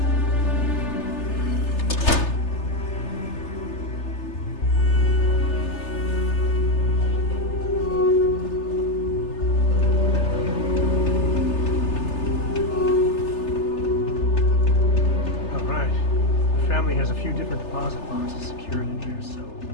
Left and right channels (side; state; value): right; late; 3.3 ms